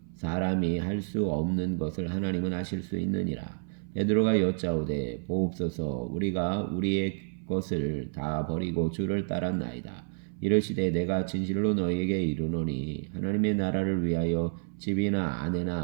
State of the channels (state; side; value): silent; left; 58 dB below the other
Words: 사람이 할 수 없는 것을 하나님은 하실 수 있느니라. 베드로가 여짜오되 보옵소서 우리가 우리의 것을 다 버리고 주를 따랐나이다. 이르시되 내가 진실로 너희에게 이르노니 하나님의 나라를 위하여 집이나